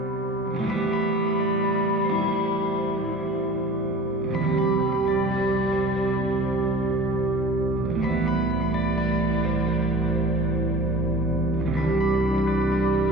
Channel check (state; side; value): normal; both; correlation 0.41